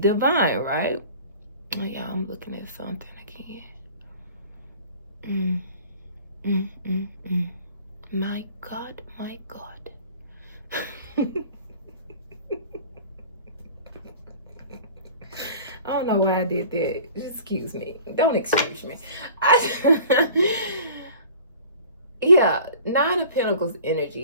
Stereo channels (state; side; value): inverted; both; correlation -0.45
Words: right? Oh yeah, I'm looking at something again. My God. I don't know why I did that. Excuse me. Don't excuse me. Yeah, 9 of Pentacles